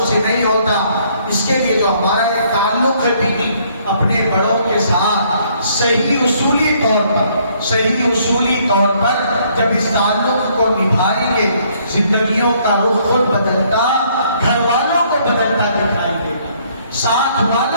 سے نہیں ہوتا, اس کے لیے جو ہمارا یہ تعلق ہے دینی اپنے بڑوں کے ساتھ صحیح اصولی طور پر جب اس تعلق کو نبھائیں گے, زندگیوں کا رخ خود بدلتا, گھر والوں کو بدلتا دکھائی دے گا, ساتھ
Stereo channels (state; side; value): inverted; both; correlation -0.65